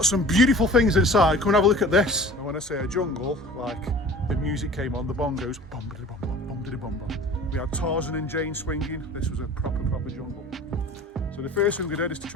some beautiful things inside. Come and have a look at this. And when I say a jungle, like the music came on, the bongos, bum-da-da-bum-bum, bum-da-da-bum-bum. We had Tarzan and Jane swinging. This was a proper jungle. So the first thing we did is to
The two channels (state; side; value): normal; both; correlation 0.43